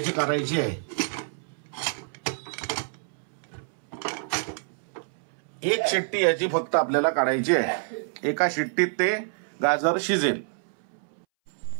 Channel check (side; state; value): left; silent; 60 dB below the other